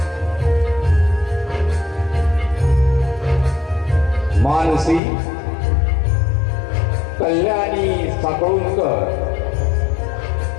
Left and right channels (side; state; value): right; drops out; at 5.0 s